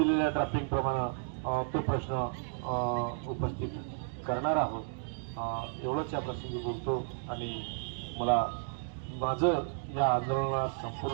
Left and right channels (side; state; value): left; silent; digital silence